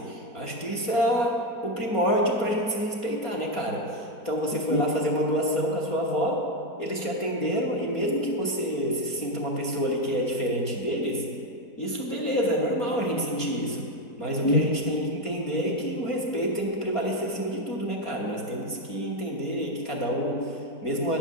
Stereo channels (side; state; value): right; late; 4.3 ms